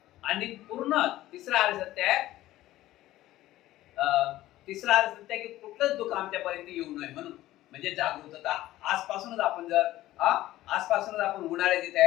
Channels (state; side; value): quieter; right; 15.4 dB